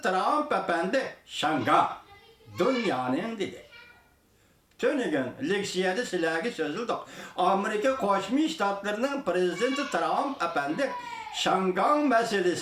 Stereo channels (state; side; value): identical; both; correlation 1.00